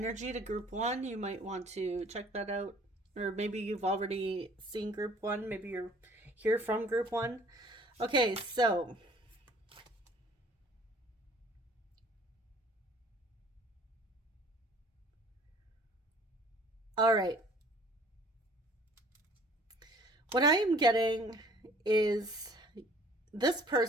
to group one. You might want to check that out. Or maybe you've already seen group one. Maybe you're here from group one. Okay, so all right. What I am getting is this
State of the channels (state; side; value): normal; both; correlation 0.54